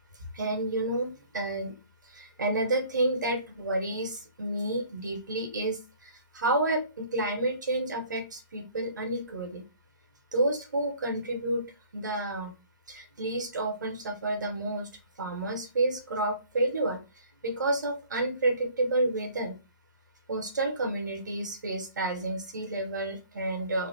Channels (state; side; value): inverted; both; correlation -0.54